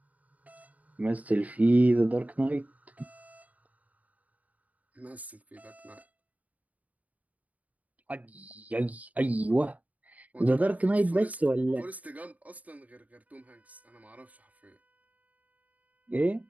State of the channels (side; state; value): left; late; 0.073 ms